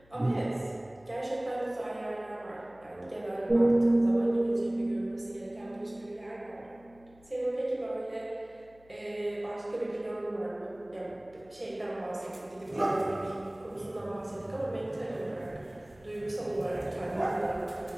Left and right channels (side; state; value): left; noise; hum, 27 dB below the sound